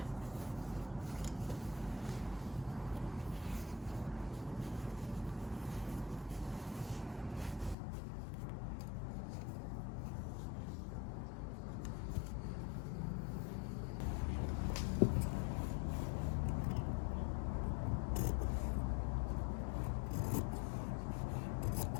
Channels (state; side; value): drops out; right; at 7.8 s